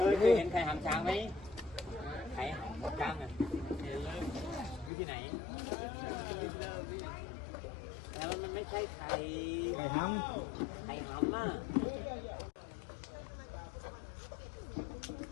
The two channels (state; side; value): drops out; right; at 4.9 s